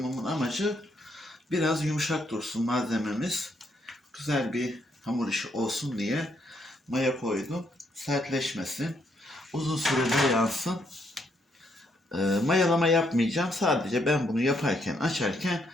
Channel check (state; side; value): normal; both; correlation 0.74